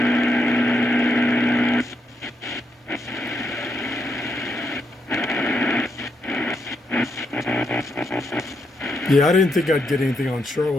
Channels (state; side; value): normal; both; correlation 0.80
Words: Yeah, I didn't think I'd get anything on